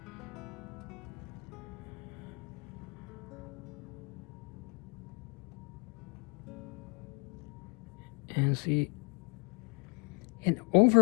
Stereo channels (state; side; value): quieter; right; 33.0 dB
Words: And see, and